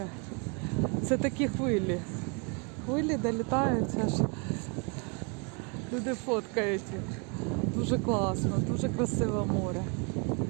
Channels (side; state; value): left; quieter; 34.4 dB